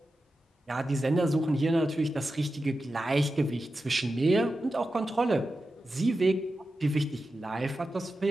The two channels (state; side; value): normal; both; correlation 0.91